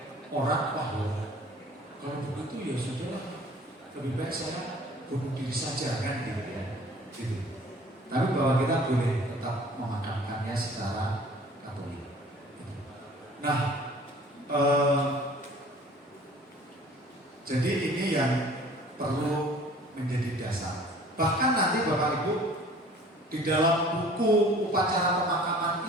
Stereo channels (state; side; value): normal; both; correlation 0.50